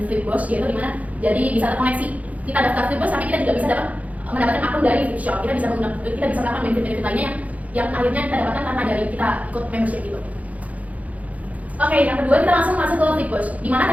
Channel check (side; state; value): left; late; 0.071 ms